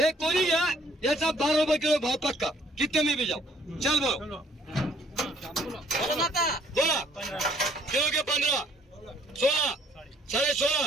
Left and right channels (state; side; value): normal; both; correlation 0.62